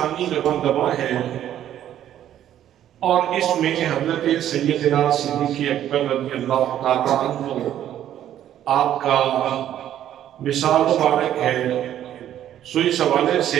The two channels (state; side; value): quieter; left; 11.3 dB